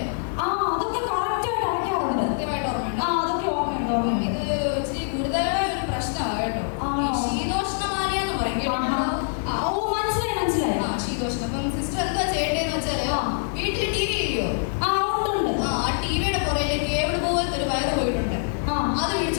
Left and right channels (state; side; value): silent; right; digital silence